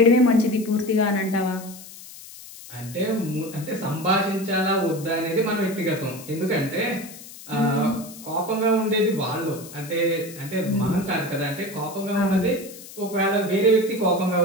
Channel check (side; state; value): left; noise; hiss, 16 dB below the sound